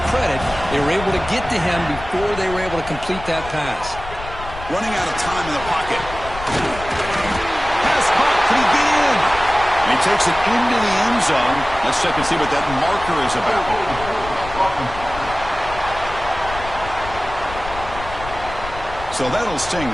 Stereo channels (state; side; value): noise; left; rumble, 12 dB below the sound